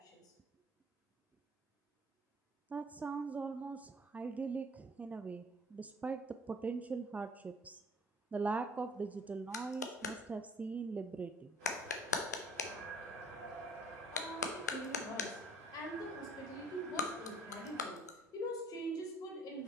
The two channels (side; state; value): both; normal; correlation 0.54